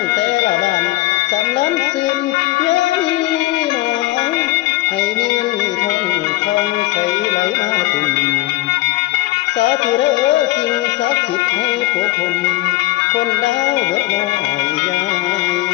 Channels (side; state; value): right; quieter; 18.5 dB